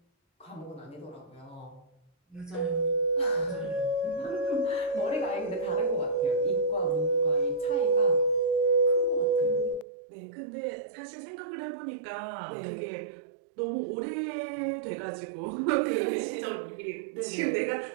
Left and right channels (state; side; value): drops out; left; at 9.9 s